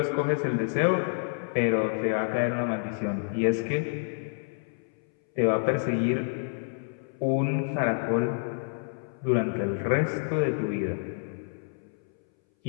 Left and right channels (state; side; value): silent; right; 59 dB below the other